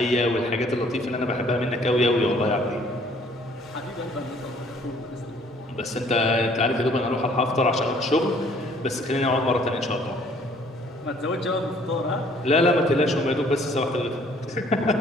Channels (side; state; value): both; normal; correlation 0.59